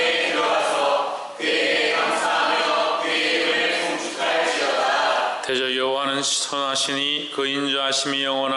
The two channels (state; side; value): identical; both; correlation 1.00